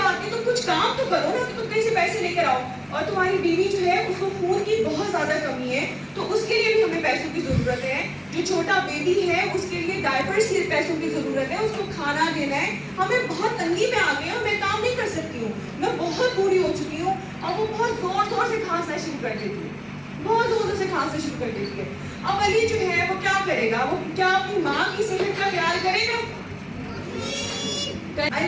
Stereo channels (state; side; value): identical; both; correlation 1.00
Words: नहीं, तुम कुछ काम तो करो ना, तो तुम कहीं से पैसे लेकर आओ। और तुम्हारी बीवी जो है उसको खून की बहुत ज़्यादा कमी है तो उसके लिए भी हमें पैसों की ज़रूरत है, जो छोटा बेबी है उसके लिए डायपर्स के पैसों की ज़रूरत है, उसको खाना देना है, हमें बहुत तंगी में आ गए हैं, मैं काम नहीं कर सकती हूँ, मैं बहुत बूढ़ी हो चुकी हूँ। और वो बहुत ज़ोर से खांसना शुरू कर देती है, बहुत ज़ोर से खांसना शुरू कर देती है। अब अली जो है वो क्या करेगा, वो क्या अपनी माँ की सेहत का ख्याल करेगा?